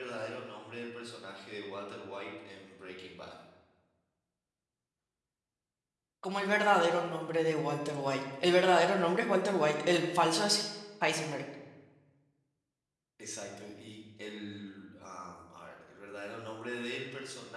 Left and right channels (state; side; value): identical; both; correlation 1.00